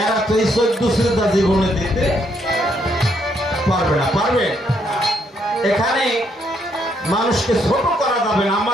এরা তো এই 14 সিজদা জীবনে দিতে পারবে না। পারবে? এখানে মানুষকে ছোট করা যাবে না।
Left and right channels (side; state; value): both; normal; correlation 0.73